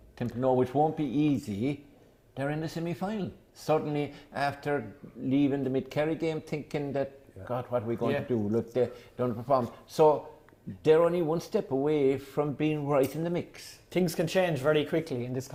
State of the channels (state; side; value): identical; both; correlation 1.00